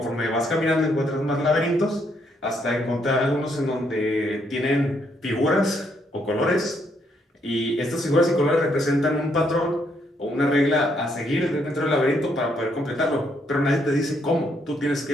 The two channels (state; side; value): normal; both; correlation 0.73